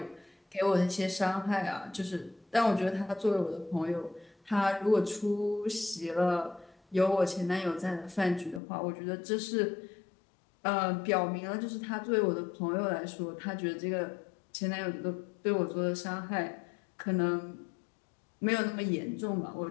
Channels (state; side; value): drops out; right; at 8.6 s